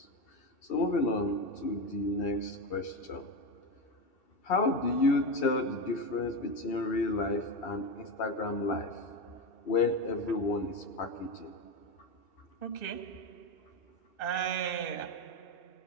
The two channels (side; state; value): right; late; 2.7 ms